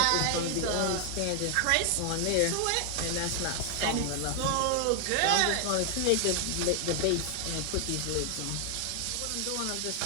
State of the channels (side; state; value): both; different; correlation 0.00